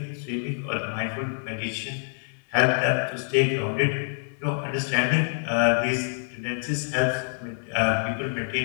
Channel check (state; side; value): silent; right; 57 dB below the other